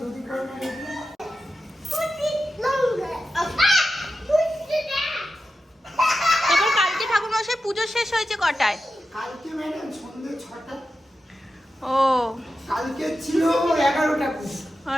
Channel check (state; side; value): normal; both; correlation 0.91